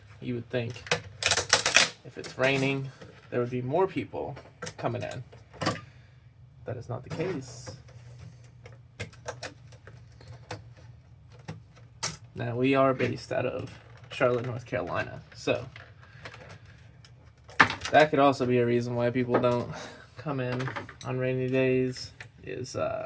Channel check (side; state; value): both; identical; correlation 1.00